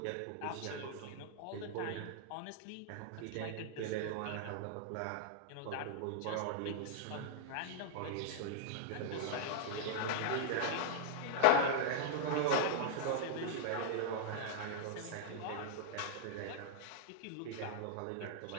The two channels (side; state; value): both; different; correlation -0.01